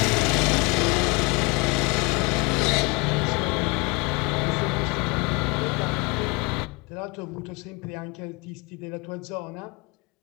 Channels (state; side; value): quieter; right; 27.8 dB